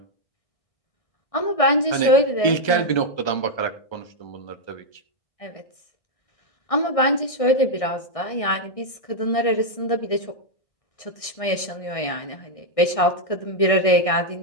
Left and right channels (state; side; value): late; right; 1.6 ms